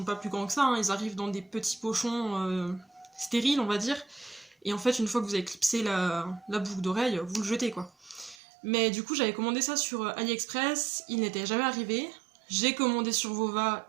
pas plus grands que ça, hein, ils arrivent dans des petits pochons stériles on va dire, et en fait une fois que vous avez clipsé la boucle d'oreille, vous le jetez quoi. Mais du coup j'avais commandé ça sur AliExpress, il n'était jamais arrivé, j'ai commandé sur Vova,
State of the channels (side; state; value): left; drops out; at 8.3 s